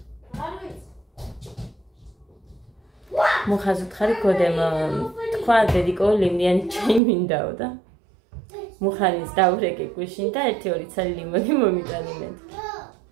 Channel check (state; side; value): drops out; left; at 7.0 s